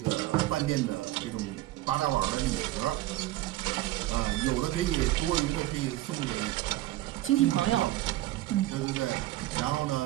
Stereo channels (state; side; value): quieter; left; 16.5 dB